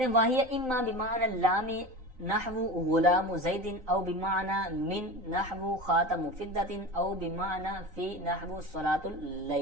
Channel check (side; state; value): left; late; 3.9 ms